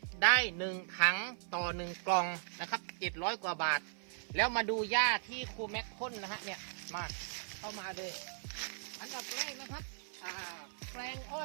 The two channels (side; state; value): left; silent; 53 dB below the other